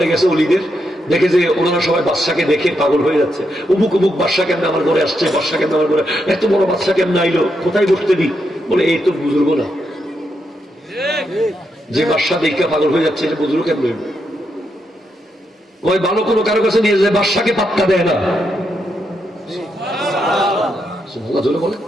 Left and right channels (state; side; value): normal; both; correlation 0.82